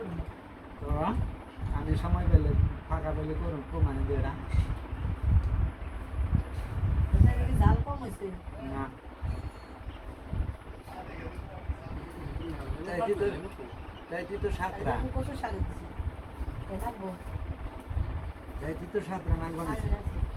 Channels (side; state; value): both; identical; correlation 1.00